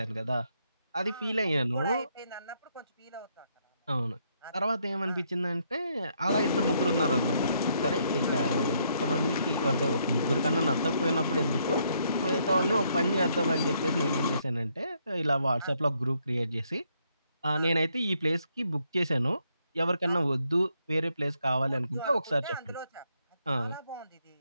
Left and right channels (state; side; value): inverted; both; correlation -0.73